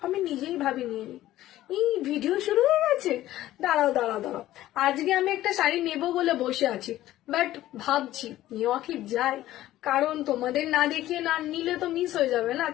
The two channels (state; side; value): quieter; right; 14.6 dB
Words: আমি নিজেই ভাবিনি। এই ভিডিও শুরু হয়ে গেছে। দাঁড়াও দাঁড়াও দাঁড়াও, আজকে আমি একটা শাড়ি নেব বলে বসে আছি, বাট ভাবছি নেওয়া কি যায়, কারণ তোমাদের না দেখিয়ে না নিলে তো মিস হয়ে যাবে না।